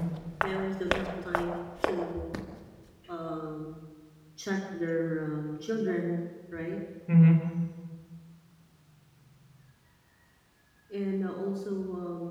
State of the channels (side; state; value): both; identical; correlation 1.00